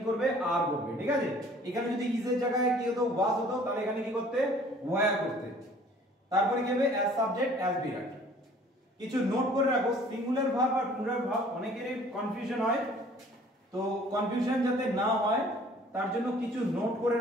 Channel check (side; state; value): both; normal; correlation 0.53